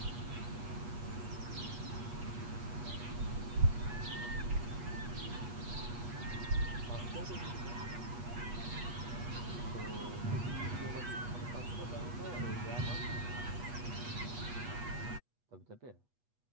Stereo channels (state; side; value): late; left; 8.3 ms